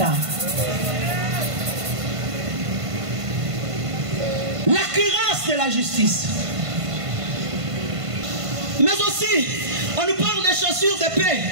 La cuirasse de la justice. Mais aussi, on nous parle des chaussures de paix.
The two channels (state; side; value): late; left; 1.5 ms